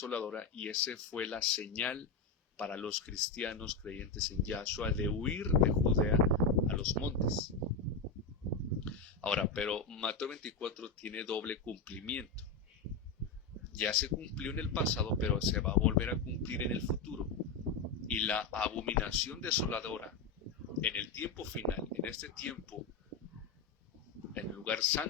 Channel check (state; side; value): quieter; right; 4.5 dB